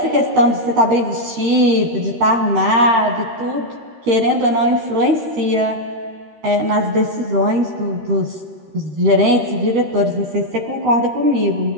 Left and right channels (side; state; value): left; late; 13 ms